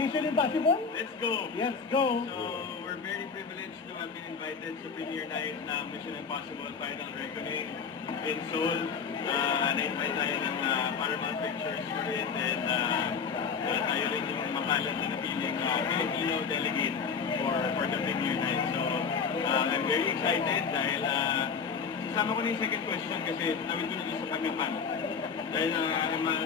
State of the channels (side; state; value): right; quieter; 5.8 dB